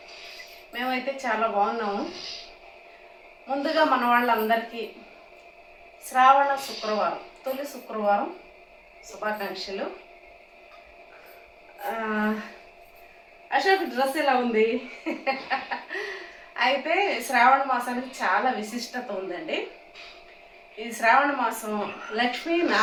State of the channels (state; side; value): identical; both; correlation 1.00